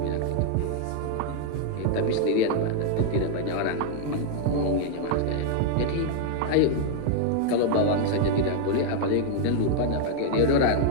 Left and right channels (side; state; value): both; different; correlation -0.01